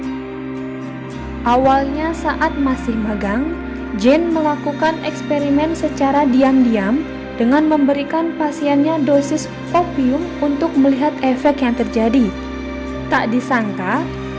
Awalnya saat masih magang, Jane melakukan eksperimen secara diam-diam dengan memberikan pasiennya dosis opium untuk melihat efek yang terjadi. Tak disangka,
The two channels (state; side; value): identical; both; correlation 1.00